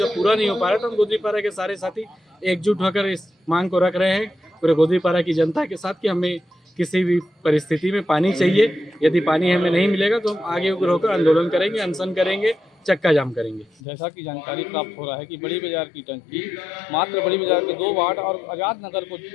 पूरा नहीं हो पा रहा, तो हम गोदरीपारा के सारे साथी एकजुट होकर इस मांग को रख रहे हैं पूरे गोदरीपारा की जनता के साथ कि हमें किसी भी परिस्थिति में पानी चाहिए। यदि पानी हमें नहीं मिलेगा तो हम आगे उग्र होकर आंदोलन करेंगे, अनशन करेंगे, चक्का जाम करेंगे। जैसा कि जानकारी प्राप्त हो रहा है कि बड़ी बाजार की टंकी मात्र बड़ी बाजार के 2 वार्ड और आज़ाद नगर को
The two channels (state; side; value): drops out; right; at 13.8 s